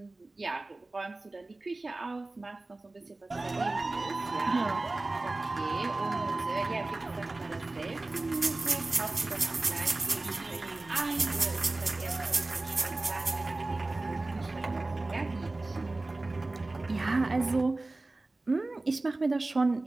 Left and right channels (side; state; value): left; quieter; 3.1 dB